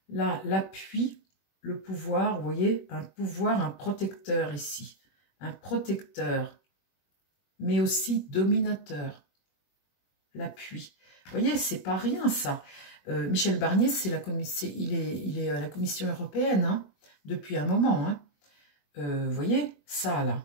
Là, l'appui, le pouvoir, vous voyez, un pouvoir, un protecteur ici. Un protecteur, mais aussi dominateur. L'appui. Vous voyez, c'est pas rien, ça. Michel Barnier, c'est il est à la Commission européenne, hein, depuis un moment. Hein. Vous voyez, ça, là.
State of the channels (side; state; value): right; late; 21 ms